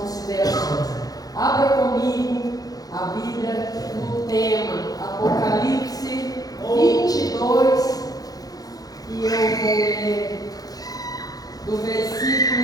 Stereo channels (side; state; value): right; late; 0.18 ms